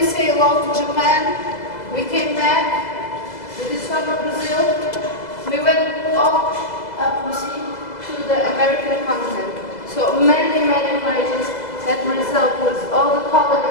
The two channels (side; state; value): right; late; 2.0 ms